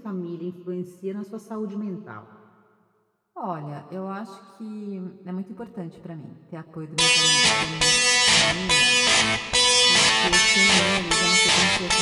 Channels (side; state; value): both; identical; correlation 1.00